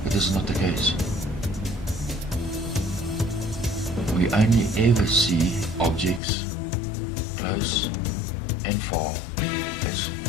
But this is not the case. We only ever see objects close and far as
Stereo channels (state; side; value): drops out; right; at 6.2 s